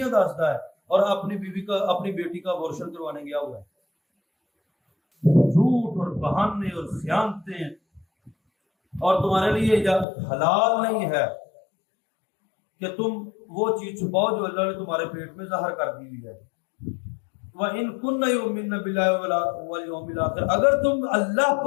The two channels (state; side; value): drops out; right; at 10.1 s